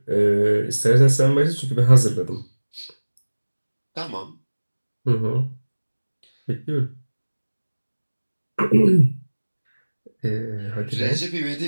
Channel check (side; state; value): both; inverted; correlation -1.00